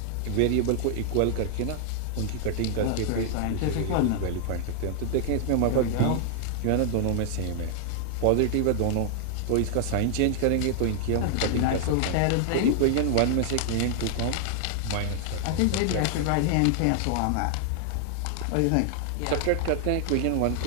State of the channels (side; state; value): both; different; correlation 0.00